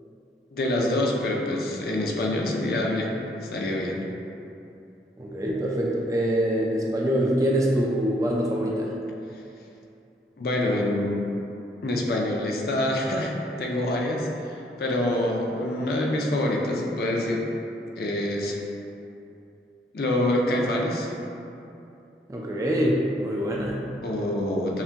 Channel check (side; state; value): both; normal; correlation 0.65